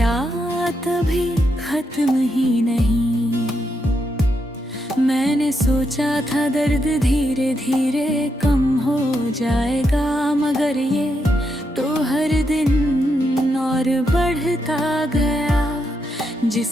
अभी खत्म ही नहीं। मैंने सोचा था दर्द धीरे धीरे कम हो जाएगा, मगर ये तो हर दिन और बढ़ता गया।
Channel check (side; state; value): both; normal; correlation 0.82